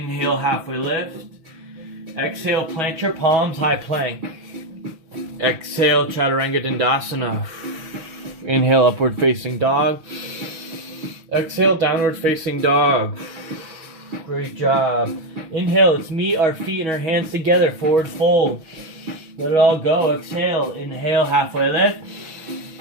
halfway lift. Exhale, plant your palms, high plank. Exhale, chaturanga dandasana. Inhale, upward facing dog. Exhale, downward facing dog. Great job. Inhale, let's meet our feet and our hands together, forward fold. Let it all go. Exhale, inhale, halfway lift.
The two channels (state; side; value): late; left; 6.2 ms